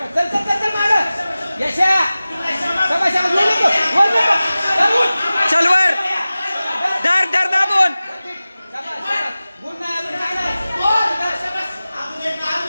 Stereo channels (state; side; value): inverted; both; correlation -0.97